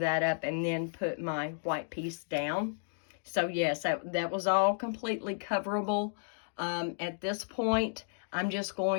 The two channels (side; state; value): right; silent; digital silence